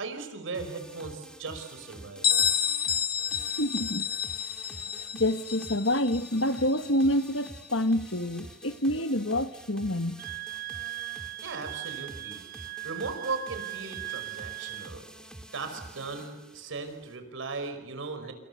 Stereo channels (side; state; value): both; normal; correlation 0.10